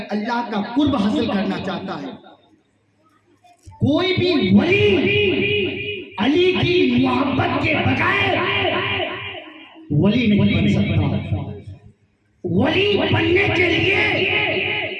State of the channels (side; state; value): both; identical; correlation 1.00